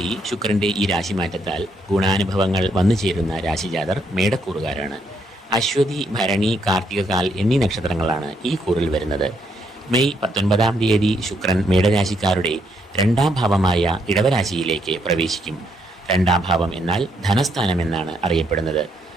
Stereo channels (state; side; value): normal; both; correlation 0.74